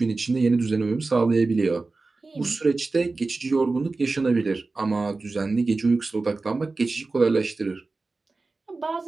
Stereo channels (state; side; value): quieter; left; 3.7 dB